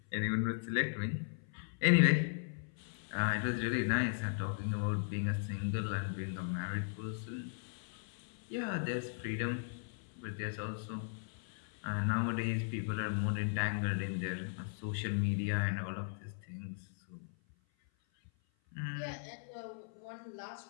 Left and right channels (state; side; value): silent; right; 53 dB below the other